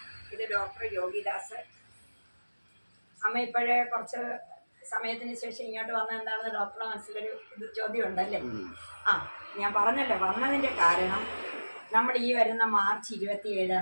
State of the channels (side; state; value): both; inverted; correlation -1.00